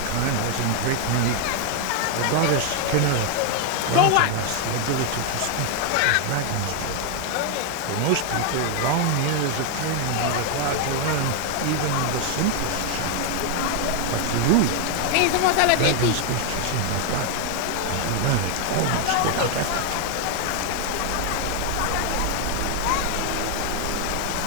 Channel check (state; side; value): different; both; correlation 0.01